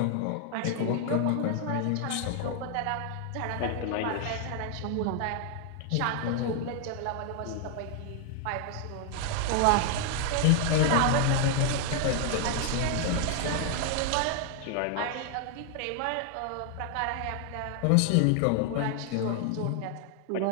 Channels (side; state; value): both; different; correlation 0.00